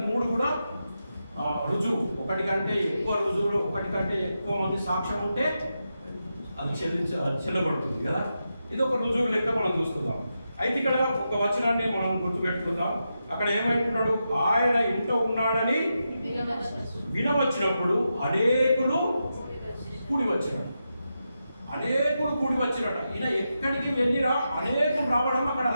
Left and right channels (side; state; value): both; inverted; correlation -0.87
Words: 3 కూడా రుజువు, ఒకటి కంటే ఎక్కువ రుజువులు, ఒకటి కంటే ఎక్కువ మంది సాక్ష్యం ఉంటే అది చెల్లబడుతుంది కదా. ఇది ఒక రుజువు లెక్క మనం చూసుకుందాం. అయితే ఇక్కడ ఒక వచనాన్ని మనం గుర్తుపెట్టుకుందాం. అక్కడ ఏమంటున్నాడు, ఆయన ఇంట్లో ఉన్నాడని వినవచ్చినప్పుడు అనేకులు కూడి వచ్చినట్టు, అనేకులు కూడి వచ్చినట్ట. ఈయన ఎక్కడికి వెళ్ళినా అనేకులు రావడం అక్కడ